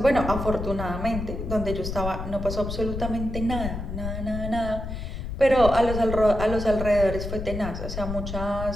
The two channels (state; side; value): noise; left; rumble, 6 dB below the sound